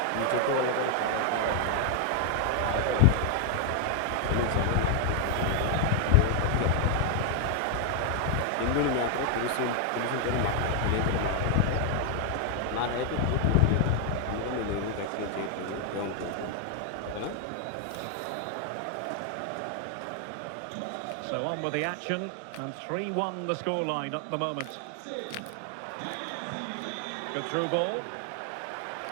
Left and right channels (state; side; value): different; both; correlation 0.00